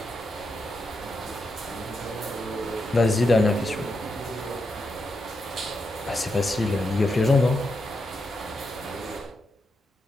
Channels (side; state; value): both; normal; correlation 0.85